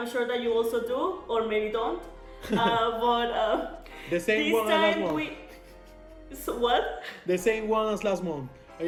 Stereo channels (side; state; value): both; identical; correlation 1.00